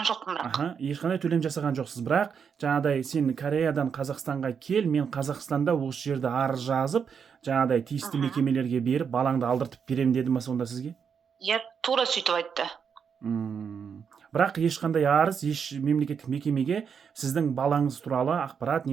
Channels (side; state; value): left; quieter; 6.8 dB